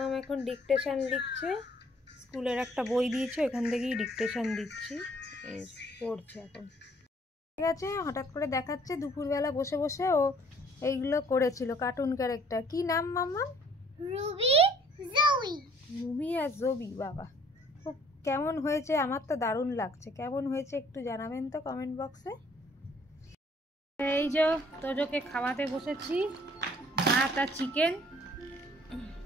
এখন ডিকটেশন লিখছে, স্কুলের একটা বই দিয়েছে, এখান থেকেই ডিকটেশন দিচ্ছি, পড়ছে এখন। ঠিক আছে, হঠাৎ করে দেখাচ্ছে দুপুরবেলা বসে বসে ও এইগুলো করেছিল কার্টুন ক্যারেক্টার। কি নাম মাম্মাম? রুবি জবি। রুবি আর জবি, বাবা খুব কেমন হয়েছে? আমার তো দারুণ লাগছে। কেমন হয়েছে একটু জানাবেন তো কমেন্ট বক্সে। এই যে তোজোকে খাওয়াতে বসেছি, ভাত আর চিকেন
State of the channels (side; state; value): both; normal; correlation 0.59